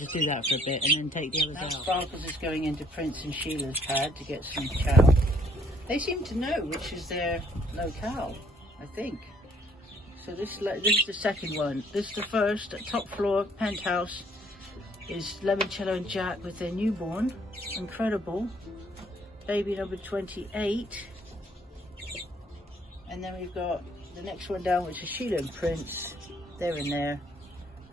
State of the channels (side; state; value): both; normal; correlation 0.64